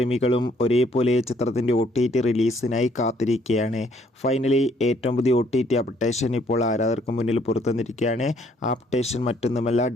ഒരേപോലെ ചിത്രത്തിൻ്റെ OTT റിലീസിനായി കാത്തിരിക്കുകയാണ്. ഫൈനലി ഏറ്റവും പുതിയ OTT അപ്ഡേഷൻ ഇപ്പോൾ ആരാധകർക്ക് മുന്നിൽ പുറത്തുവന്നിരിക്കുകയാണ്. ആ അപ്ഡേഷൻ മറ്റൊന്നുമല്ല,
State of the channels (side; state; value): both; normal; correlation 0.66